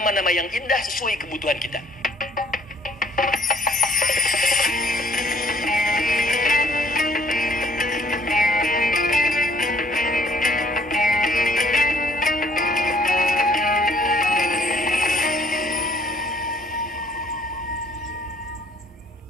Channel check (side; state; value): both; normal; correlation 0.60